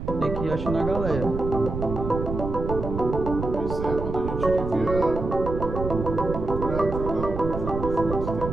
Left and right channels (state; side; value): noise; right; rumble, 5 dB below the sound